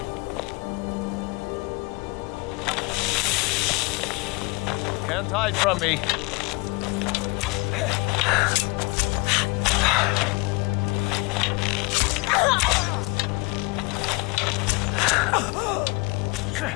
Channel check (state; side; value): quieter; right; 26.8 dB